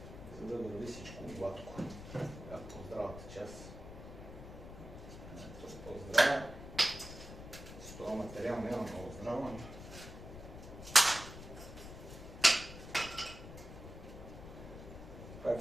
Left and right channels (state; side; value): noise; left; rumble, 12 dB below the sound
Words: За да върви всичко гладко. По-здравата част. По-здрава. С това материал няма много здрава. Пак